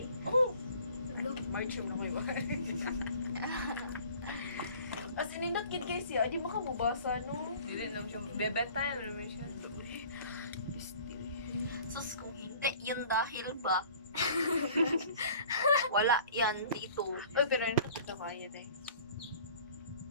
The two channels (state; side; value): inverted; both; correlation -0.48